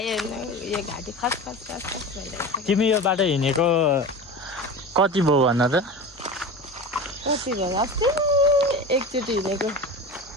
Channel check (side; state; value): both; normal; correlation 0.30